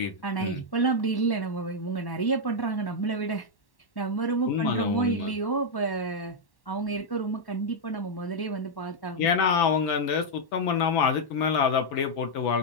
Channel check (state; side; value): late; right; 1.1 ms